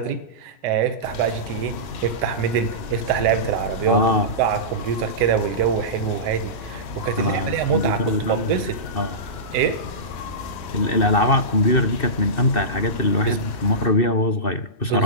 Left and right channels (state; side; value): late; right; 2.6 ms